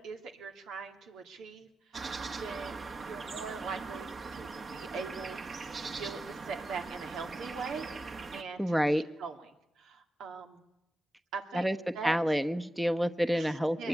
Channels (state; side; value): normal; both; correlation 0.92